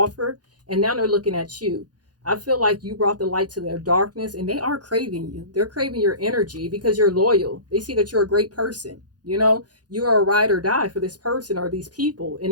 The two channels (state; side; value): late; left; 0.69 ms